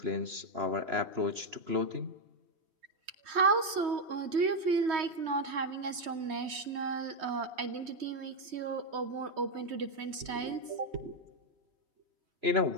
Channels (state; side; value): late; left; 3.2 ms